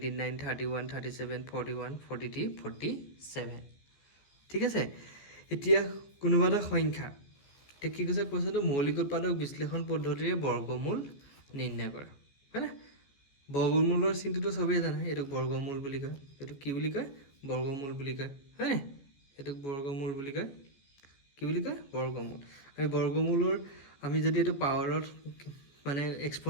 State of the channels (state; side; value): late; right; 14 ms